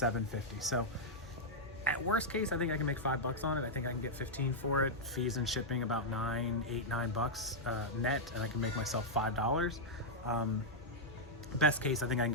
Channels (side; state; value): both; normal; correlation -0.05